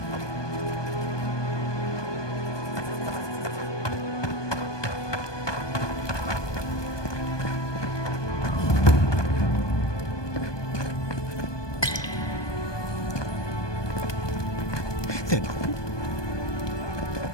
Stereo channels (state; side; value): late; right; 1.2 ms